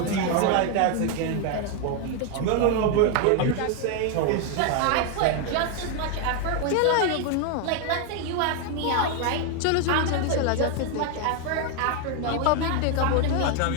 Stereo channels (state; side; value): different; both; correlation 0.01